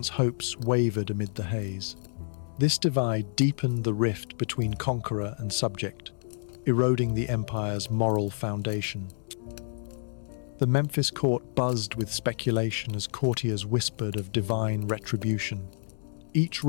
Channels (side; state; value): right; silent; digital silence